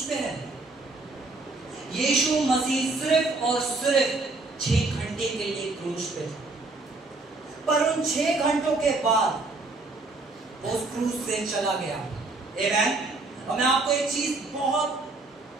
पे है? यीशु मसीह सिर्फ और सिर्फ 6 घंटे के लिए क्रूस पे था, पर उन 6 घंटों के बाद वो उस क्रूस से चला गया। आमीन। और मैं आपको एक चीज बहुत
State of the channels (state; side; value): quieter; left; 3.3 dB